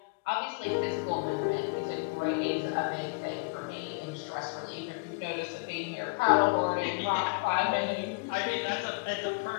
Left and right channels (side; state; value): right; quieter; 31.1 dB